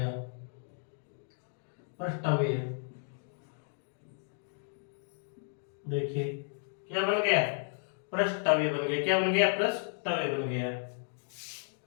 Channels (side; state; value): right; silent; digital silence